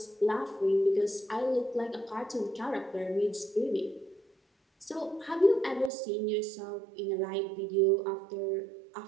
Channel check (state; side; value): drops out; left; at 5.9 s